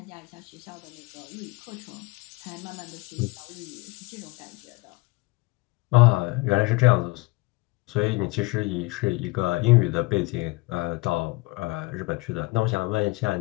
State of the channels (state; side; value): quieter; right; 23.6 dB